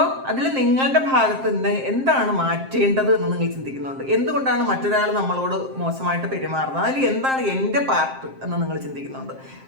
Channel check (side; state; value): left; late; 7.6 ms